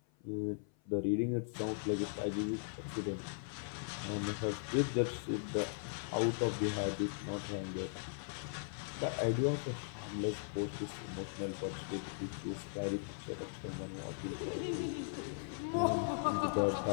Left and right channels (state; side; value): silent; right; 52 dB below the other